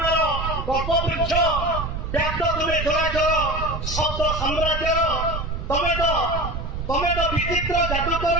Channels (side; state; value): right; noise; rumble, 4 dB below the sound